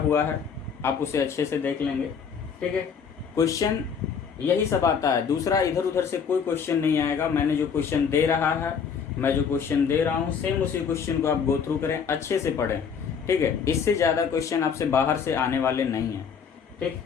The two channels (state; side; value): quieter; right; 6.7 dB